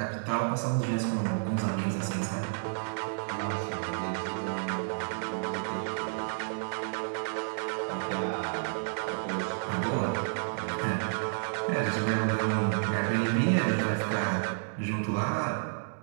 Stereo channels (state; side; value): silent; left; digital silence